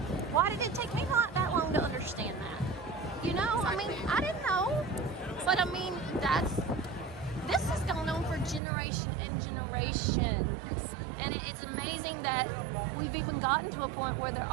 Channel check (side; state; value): left; drops out; at 8.6 s